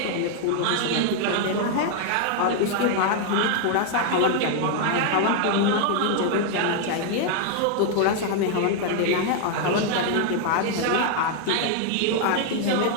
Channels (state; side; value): different; both; correlation 0.00